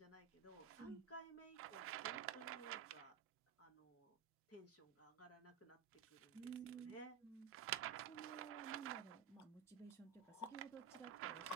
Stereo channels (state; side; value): quieter; left; 7.8 dB